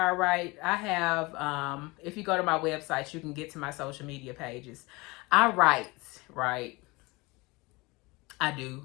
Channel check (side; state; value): right; quieter; 24.1 dB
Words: I write, I have if you go to my website, you can get to my social media pages. I write, right? I do.